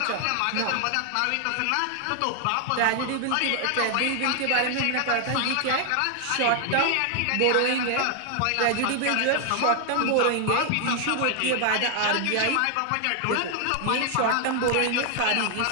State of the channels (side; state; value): both; different; correlation 0.00